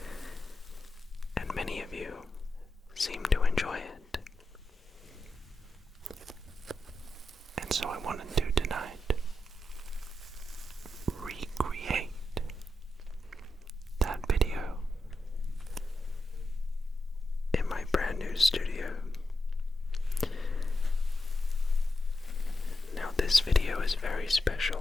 and many of you seem to enjoy it, and so I wanted to tonight recreate that video in my brand new studio. Now this video is very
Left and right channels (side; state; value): both; normal; correlation 0.88